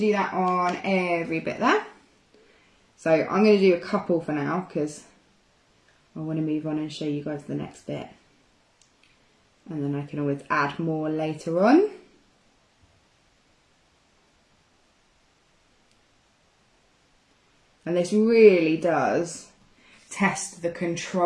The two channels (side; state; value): both; identical; correlation 1.00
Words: that on every bit there. So I'm going to do a couple for now because I want to move on and show you guys the next bit. And then I can always add more later on. And this really does test the